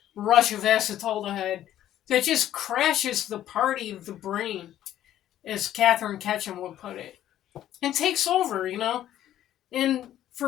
rush of acetaldehyde that just crashes the party of the brain, as Catherine Ketchum would put it, and takes over, And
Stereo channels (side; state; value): right; quieter; 12.1 dB